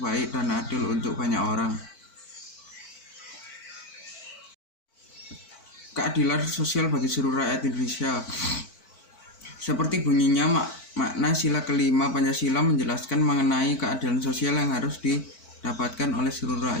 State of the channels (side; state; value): right; late; 4.5 ms